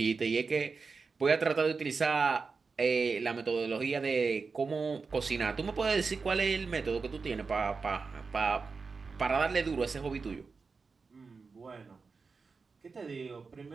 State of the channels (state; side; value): quieter; left; 4.7 dB